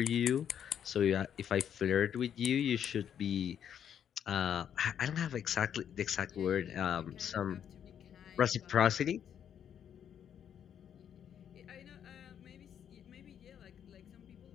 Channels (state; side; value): quieter; right; 9.0 dB